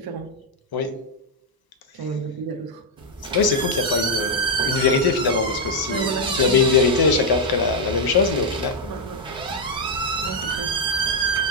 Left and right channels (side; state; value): both; normal; correlation -0.01